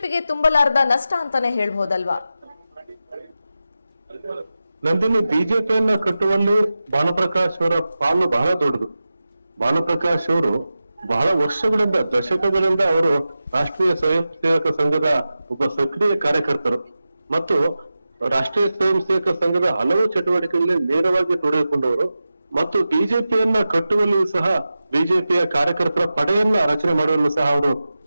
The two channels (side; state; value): both; inverted; correlation -0.94